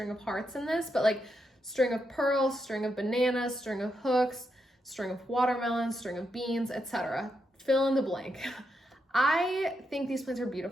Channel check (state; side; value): normal; both; correlation 0.83